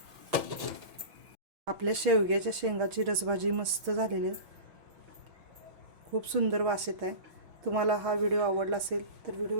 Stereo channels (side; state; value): left; late; 6.3 ms